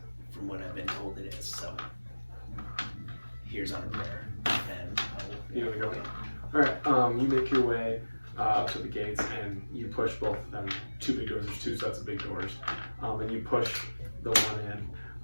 from what I've been told, it is. So, here's on a prayer, and You wanna go? Alright, you make your way up to the gates and you push both of them. 2 big doors, there's 2 sets of big doors. And you push the one in,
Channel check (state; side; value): inverted; both; correlation -1.00